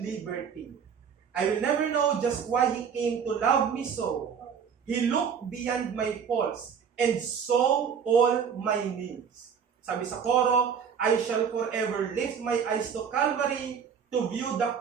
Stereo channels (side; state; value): left; quieter; 7.0 dB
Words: liberty. I will never know just why He came to love me so. He looked beyond my faults and saw all my needs. Sabi sa coro, I shall forever lift my eyes to Calvary to view the